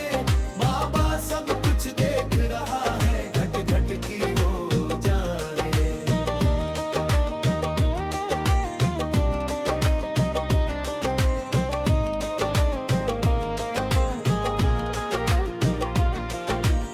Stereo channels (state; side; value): identical; both; correlation 1.00